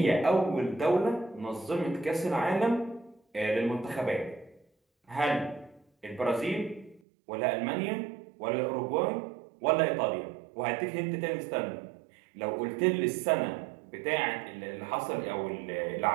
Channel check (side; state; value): left; drops out; at 7.0 s